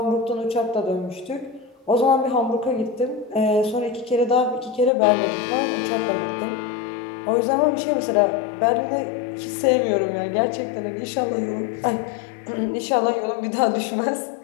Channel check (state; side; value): drops out; right; at 4.9 s